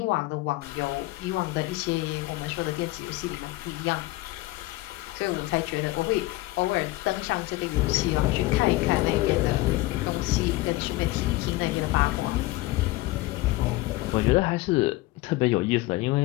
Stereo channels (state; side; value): quieter; right; 19.5 dB